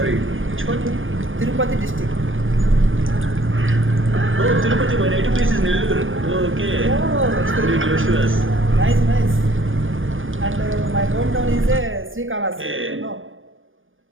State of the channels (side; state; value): left; late; 0.58 ms